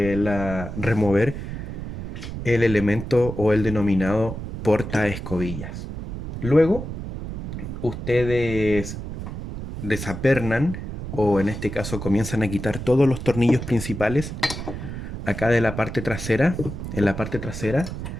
remover el elemento o el denominado porta escobillas. Luego, ustedes desapernan, o en este caso comienzan a quitar todos los tornillos principales acá de la parte trasera, en la parte trasera,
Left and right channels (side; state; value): right; noise; rumble, 7 dB below the sound